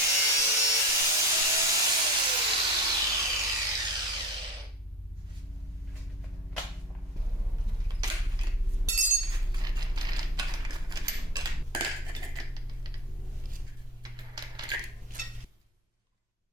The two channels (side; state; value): both; normal; correlation 0.32